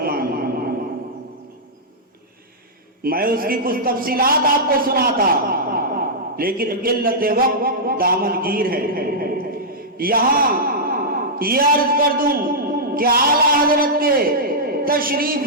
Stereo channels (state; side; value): normal; both; correlation -0.10